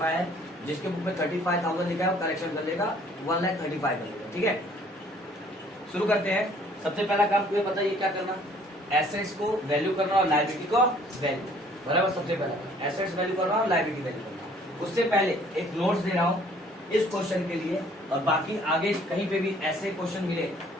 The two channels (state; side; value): normal; both; correlation 0.58